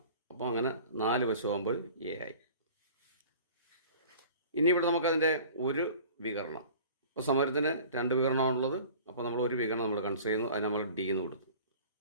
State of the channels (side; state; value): both; inverted; correlation -0.45